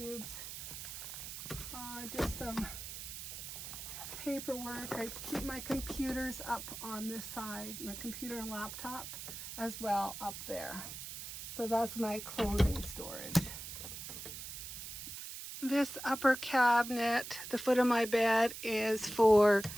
Just some paperwork. I keep my computers up on this side, my computer and laptop as well up there. So that's my clothing storage. This upper cabinet, the foot of my bed, is for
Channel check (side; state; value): right; noise; hiss, 9 dB below the sound